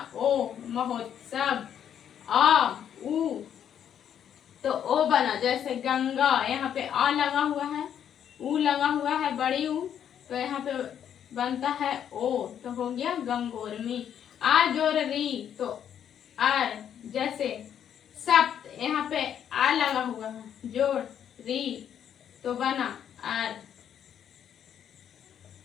ओ महोत्सव। आ उ तो ओ बना। जैसे गंगा यहाँ पे आ लगा हुआ है, उ लगा हुआ है बड़ी उ तो यहाँ पे बनता है ओ, तो हो गया गंगोर्मी। आ जोड़ री तो आर, जैसे सप्त यहाँ पे आ लगा हुआ है, जोड़ री तो बना आर।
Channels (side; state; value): right; quieter; 9.2 dB